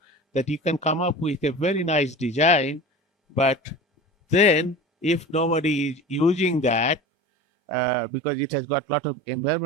that you can come up with a very nice design, but then if nobody is using that because it has got a lot of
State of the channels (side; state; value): left; drops out; at 7.0 s